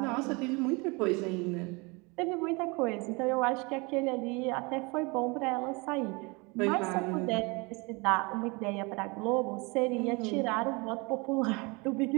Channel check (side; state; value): left; quieter; 27.8 dB